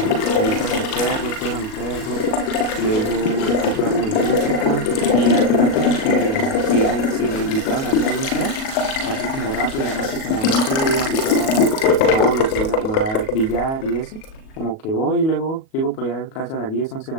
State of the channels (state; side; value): late; right; 37 ms